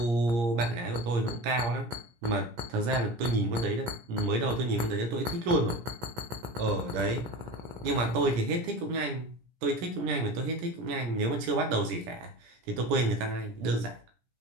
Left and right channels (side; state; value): left; late; 17 ms